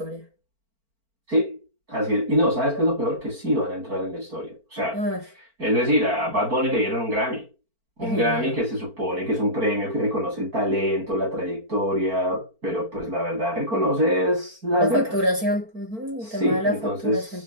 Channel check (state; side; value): late; left; 4.4 ms